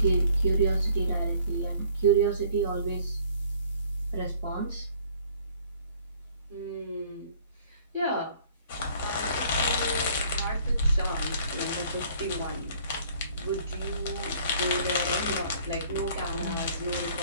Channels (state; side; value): inverted; both; correlation -0.57